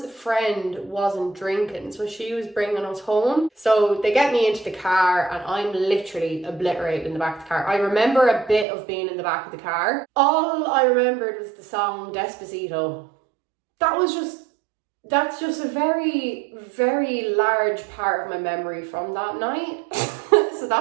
friend wasn't drinking, so she was bringing us home. So they get me into the car and I'm literally obliterated in the back of the car. I remember a bit of being in the back of the car. All I remembered was the song Despacito. That's just a very, very large part of my memory from that night. So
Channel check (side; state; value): left; drops out; at 8.7 s